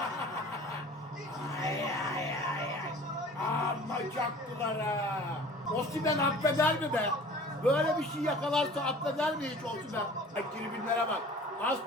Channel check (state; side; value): normal; both; correlation 0.45